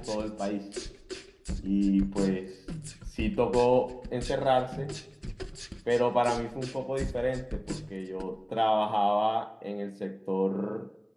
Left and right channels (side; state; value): both; identical; correlation 1.00